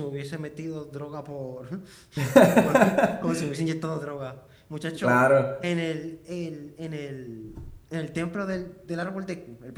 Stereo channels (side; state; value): both; identical; correlation 1.00